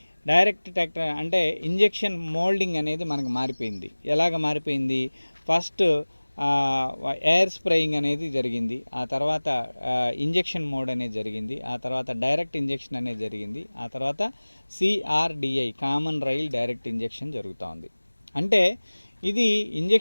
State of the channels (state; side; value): inverted; both; correlation -1.00